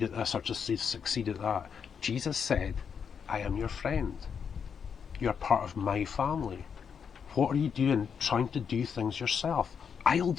at this or just to succeed at that. Jesus said, I am your friend. You're part of my family. What are you doing trying to do things yourself? I'll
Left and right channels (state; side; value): quieter; right; 6.9 dB